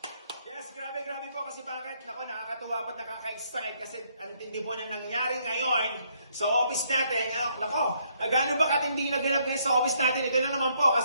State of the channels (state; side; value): inverted; both; correlation -0.70